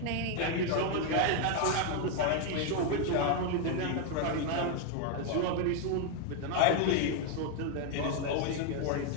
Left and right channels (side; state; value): both; different; correlation 0.01